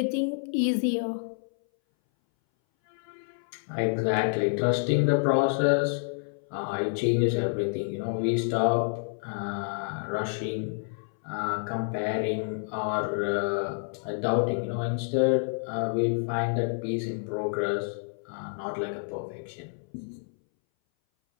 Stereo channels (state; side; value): silent; right; 59 dB below the other